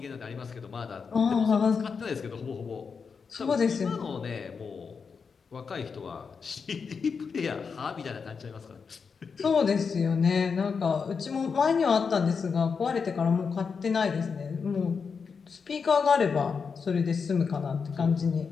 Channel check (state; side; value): quieter; right; 5.6 dB